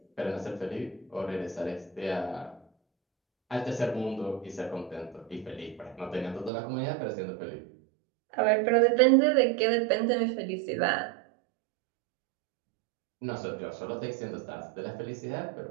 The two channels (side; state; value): left; drops out; at 6.5 s